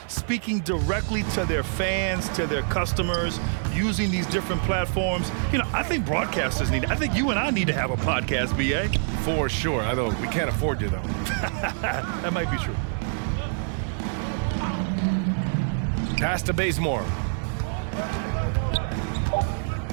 Speaking directly to their fans, to their customers, using these different platforms. You know, I think broadcasters need it. I think you and I need to have a podcast, BA. For sure. I know we can't afford you, though. That might be true. Pass to Bazemore.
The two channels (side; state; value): left; silent; digital silence